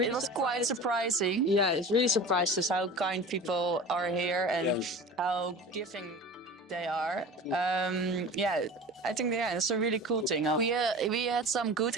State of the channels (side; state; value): both; normal; correlation 0.36